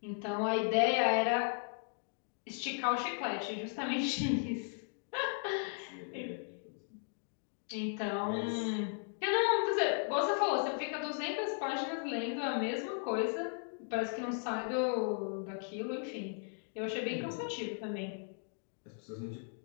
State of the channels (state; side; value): silent; right; 53 dB below the other